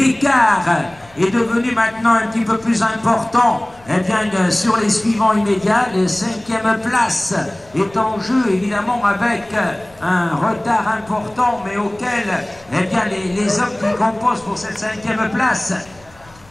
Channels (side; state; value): left; noise; rumble, 27 dB below the sound